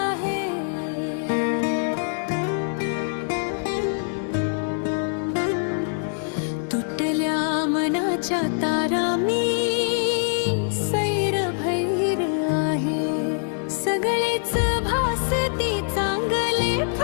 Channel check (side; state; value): right; silent; 62 dB below the other